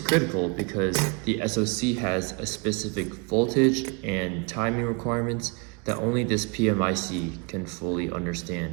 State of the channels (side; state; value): left; quieter; 31.3 dB